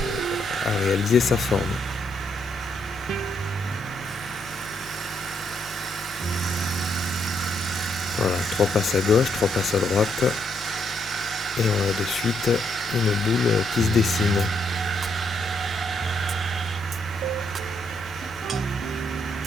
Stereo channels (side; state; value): both; normal; correlation 0.75